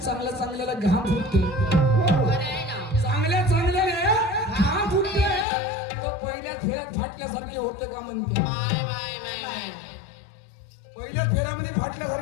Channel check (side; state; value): right; drops out; at 5.5 s